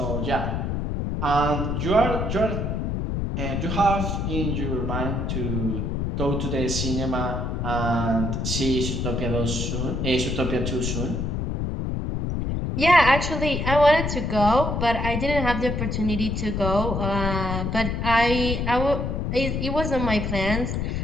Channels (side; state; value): left; noise; rumble, 1 dB below the sound